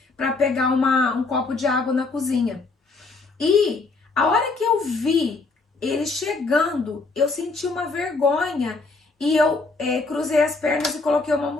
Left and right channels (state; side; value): quieter; right; 3.8 dB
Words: para pegar um copo de água na cozinha. E a hora que eu vi ele chegando, eu senti uma vergonha e eu cruzei as pernas e coloquei uma